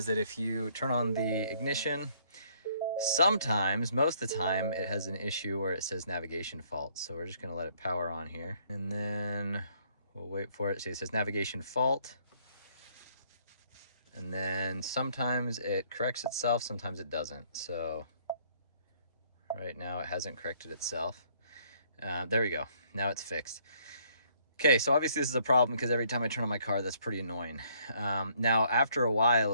that if you turn on the ignition, sometimes, most of the time, it has an issue where it says navigation fault. So we're just gonna let it power on here. And then we'll wait for it. See, it says navigation fault. And then sometimes it corrects itself, sometimes it doesn't. So right now it hasn't corrected itself. There we go. Now it's fixed. Okay, so obviously this is a problem because every time I turn on my car, that's pretty annoying. Now, after a while,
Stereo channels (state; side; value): inverted; both; correlation -0.65